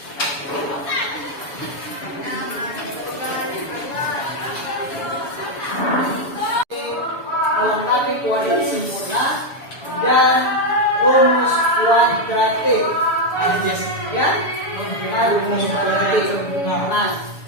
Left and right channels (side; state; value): right; late; 7.0 ms